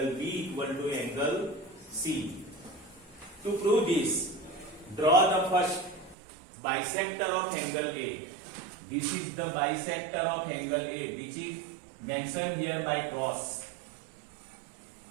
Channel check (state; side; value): drops out; left; at 6.2 s